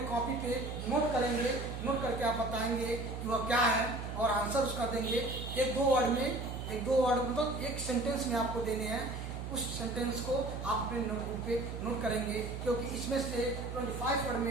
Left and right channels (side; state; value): right; noise; hum, 6 dB below the sound